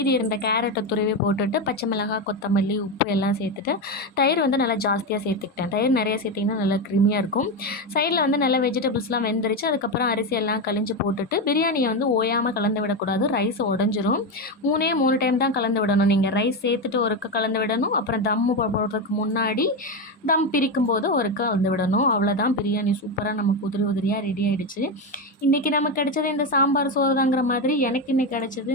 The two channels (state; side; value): normal; both; correlation 0.13